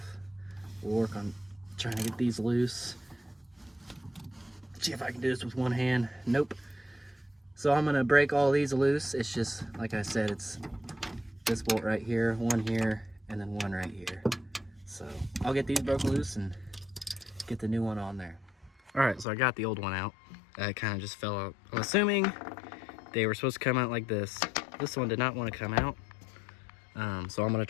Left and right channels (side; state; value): right; drops out; at 19.2 s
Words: We'll work on trying to get these loose. See if I can do this with one hand. Nope. So I'm gonna break all these loose. It's just, like I said, it's this bolt right here, one here, and then one right here. So I'll get these broken loose and get the new one on there. All right, so I got the old one out. It kind of just fell out. I'm assuming they were supposed to come out like this. This one did not want to come out. So I'm gonna